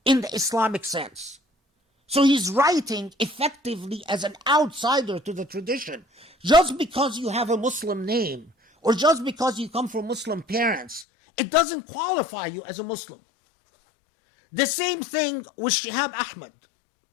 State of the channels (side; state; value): right; drops out; at 11.1 s